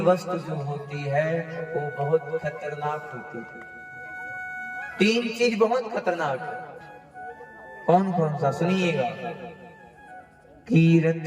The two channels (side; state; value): both; identical; correlation 1.00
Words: वस्तु जो होती है वो बहुत खतरनाक होती है। 3 चीज बहुत खतरनाक है। कौन कौन सा? सुनिएगा। कीरत